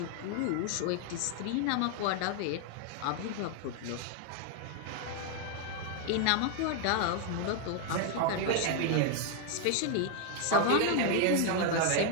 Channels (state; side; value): different; both; correlation 0.00